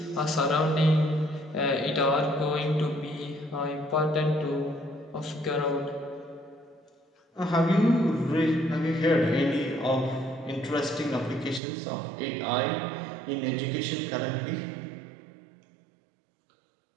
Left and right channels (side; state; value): left; drops out; at 11.6 s